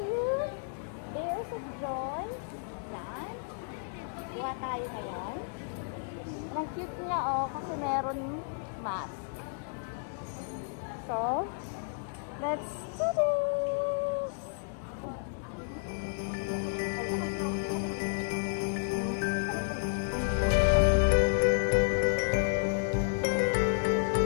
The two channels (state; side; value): silent; right; digital silence